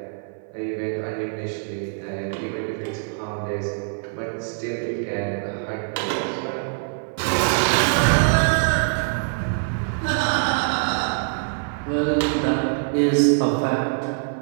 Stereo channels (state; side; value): silent; left; 57 dB below the other